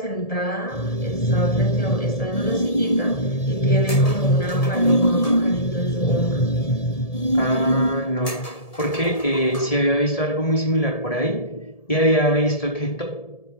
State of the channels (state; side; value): late; right; 1.7 ms